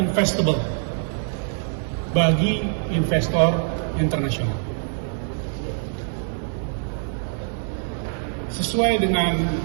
bagi investor internasional. Sesuai dengan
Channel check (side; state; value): left; silent; 60 dB below the other